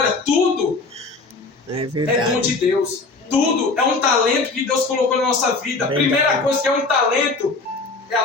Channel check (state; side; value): quieter; right; 3.7 dB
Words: tudo É é verdade. dom de Deus. Tudo é um talento que Deus colocou na nossa vida. A primeira coisa que é um talento é